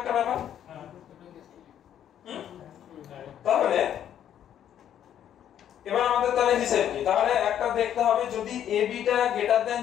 ব্যাপার। তাহলে এবার আমাদের তাহলে হিসেব কি, তাহলে একটা দেখতে হবে যদি ab টা গ্রেটার দেন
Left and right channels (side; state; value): right; quieter; 10.2 dB